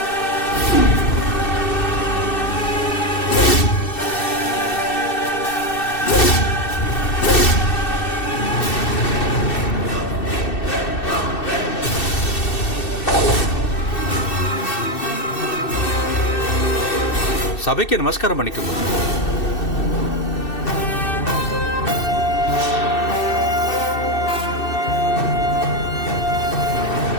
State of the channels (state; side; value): late; right; 2.6 ms